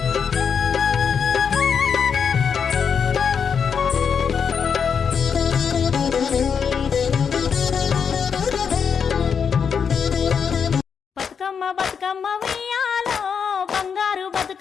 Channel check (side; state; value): right; quieter; 6.7 dB